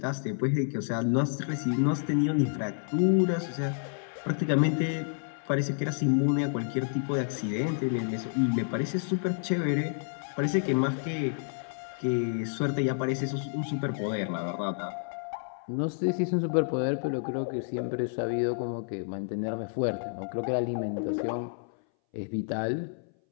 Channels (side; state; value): right; silent; 58 dB below the other